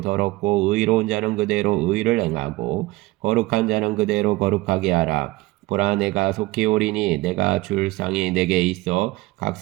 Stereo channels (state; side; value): quieter; left; 20.2 dB